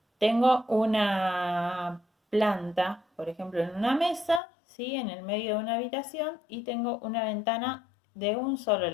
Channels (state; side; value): drops out; right; at 4.4 s